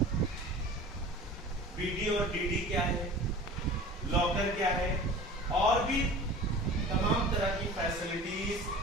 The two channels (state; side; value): normal; both; correlation 0.40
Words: बीडी और डीडी क्या है, लॉकर क्या है, और भी तमाम तरह की